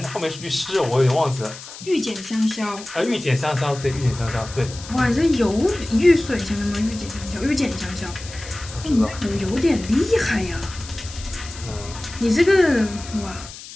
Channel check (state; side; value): noise; left; hiss, 14 dB below the sound